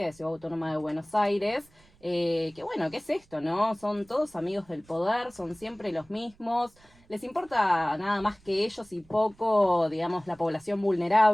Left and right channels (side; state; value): right; noise; rumble, 29 dB below the sound